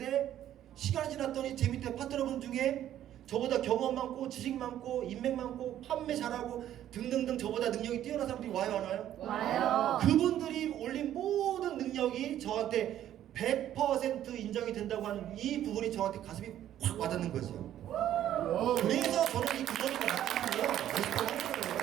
시간이 지났더니 제 밑에 파트너분 중에 저보다 경험 많고 지식 많고 인맥 많고 판매 잘하고 등등등 저보다 능력이 뛰어난 사람들이 와요, 안 와요? 와요. 그분들이 올린 모든 능력이 저한테 100% 인정이 된다고 하는 이 부분이 저한테 가슴이 확 와닿는 거죠. 그래서 저는 이 구멍이가 나타나요.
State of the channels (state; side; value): quieter; left; 11.7 dB